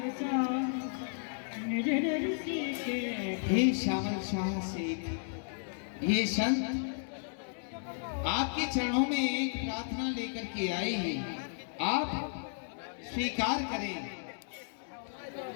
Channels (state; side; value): silent; right; digital silence